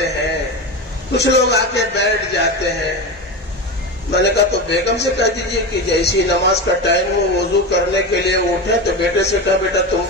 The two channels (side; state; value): both; normal; correlation 0.21